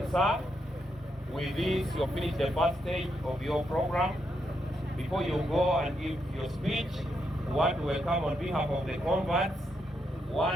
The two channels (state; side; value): normal; both; correlation 0.80